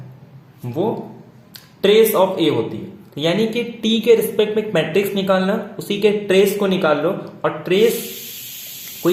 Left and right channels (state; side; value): identical; both; correlation 1.00